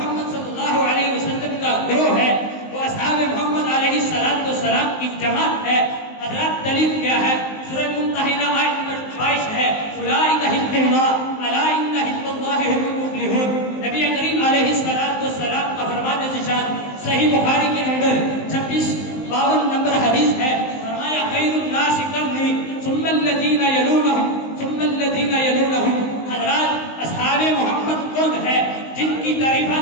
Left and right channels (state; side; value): late; right; 19 ms